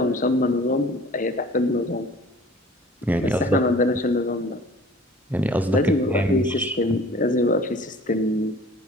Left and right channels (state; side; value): normal; both; correlation 0.48